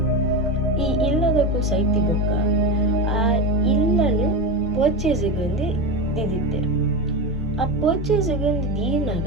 ಈ ಇಲ್ಲದಕ್ಕೂ ಸೈತಿ ಬೊಕ್ಕ ಆ ಇಲ್ಲನ್ನು ಪರ್ಚೇಸಿಗೆ ಒಂದು ದಿದಿತ್ತೇರು ಆ ಪರ್ಚೇಸಿಗೆ ಒಂದು ದೀನಾಗ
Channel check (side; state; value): both; normal; correlation 0.19